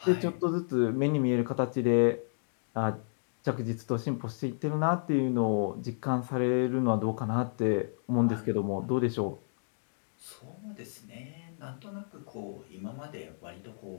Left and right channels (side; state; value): right; silent; digital silence